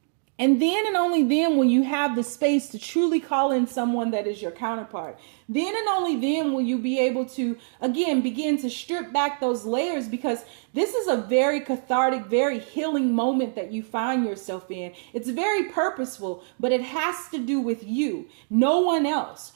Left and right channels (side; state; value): left; silent; digital silence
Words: And then and only then will you have the space to truly call in someone that is your counterpart. Then and only then will you be able to, again, begin to strip back those layers, because this is a very cathartic, very healing moment that you find yourself in. It's very purposeful, but it has to do with you, no one else.